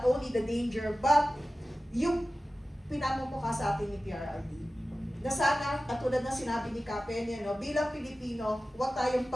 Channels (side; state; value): both; normal; correlation 0.95